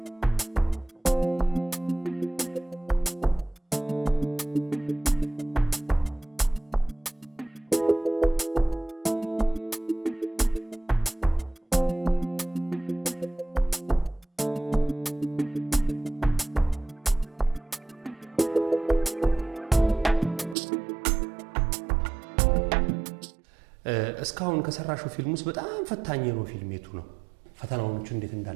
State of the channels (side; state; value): left; drops out; at 20.6 s